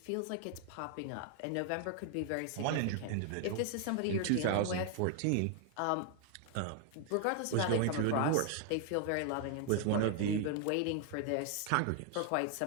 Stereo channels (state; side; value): different; both; correlation 0.00